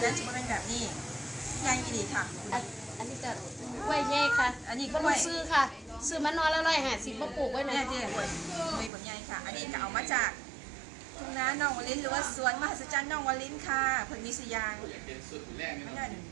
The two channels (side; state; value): left; drops out; at 8.9 s